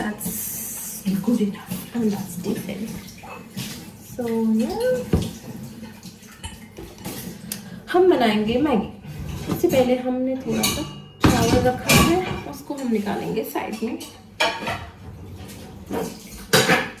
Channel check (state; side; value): identical; both; correlation 1.00